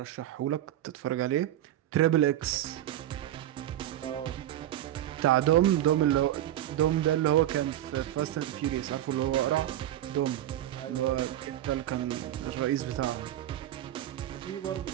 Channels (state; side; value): quieter; left; 12.7 dB